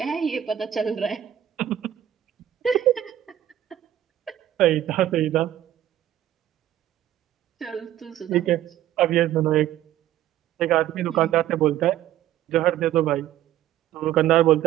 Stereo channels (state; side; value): quieter; left; 12.1 dB